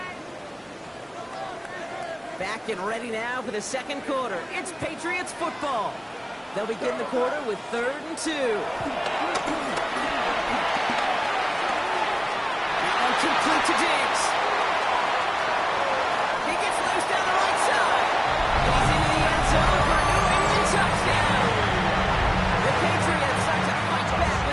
Back and ready now for the second quarter. It's Patriots football. They'll begin the quarter with 3rd and 2. Now complete to Diggs. He gets loose down the right side. He's into the end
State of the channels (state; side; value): identical; both; correlation 1.00